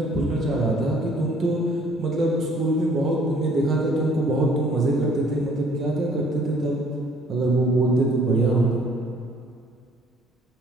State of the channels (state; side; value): normal; both; correlation 0.59